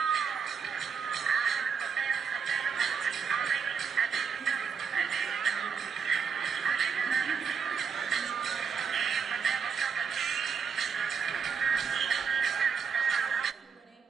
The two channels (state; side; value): quieter; left; 6.3 dB